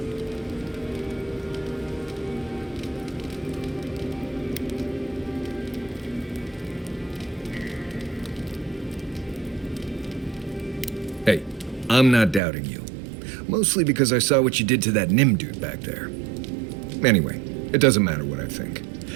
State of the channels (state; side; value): drops out; left; at 12.4 s